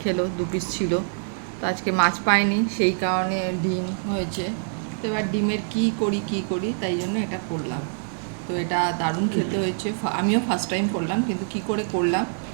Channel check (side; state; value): left; silent; 62 dB below the other